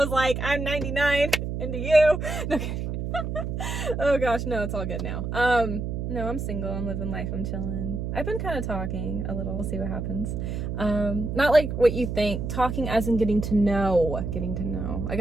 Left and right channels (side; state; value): right; noise; hum, 3 dB below the sound